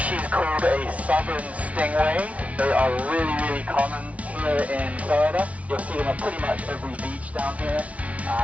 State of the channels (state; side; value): late; left; 0.066 ms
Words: called a southern stingray. They are really common here in Florida. You'll see them at pretty much every beach down here.